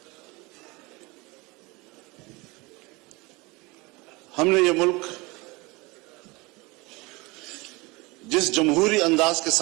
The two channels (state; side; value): quieter; left; 24.6 dB